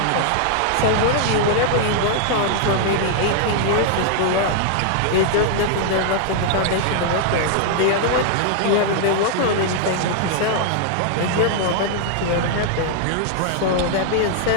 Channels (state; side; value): different; both; correlation -0.01